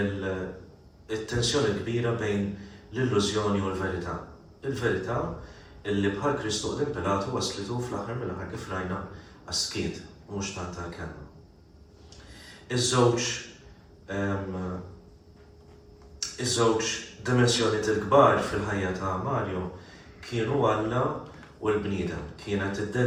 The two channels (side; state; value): both; identical; correlation 1.00